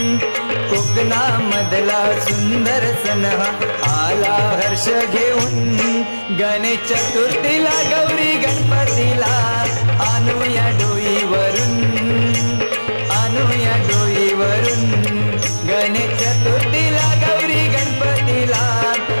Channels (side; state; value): both; inverted; correlation -1.00